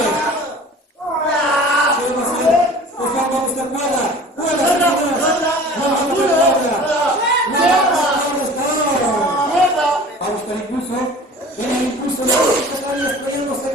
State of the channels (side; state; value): both; normal; correlation 0.43